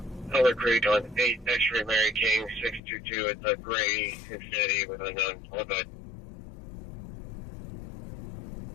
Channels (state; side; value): drops out; right; at 2.8 s